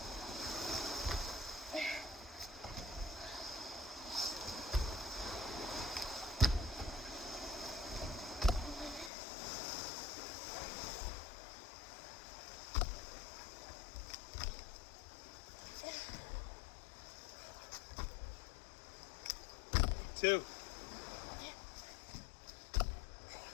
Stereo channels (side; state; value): right; drops out; at 9.1 s